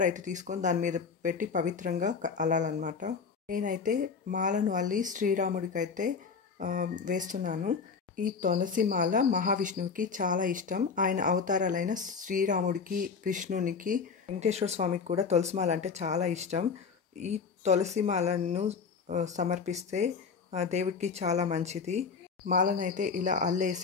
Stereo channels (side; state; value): right; quieter; 5.5 dB